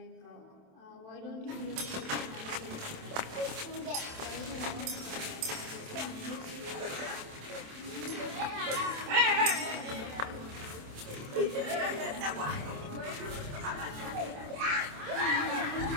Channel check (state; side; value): late; left; 27 ms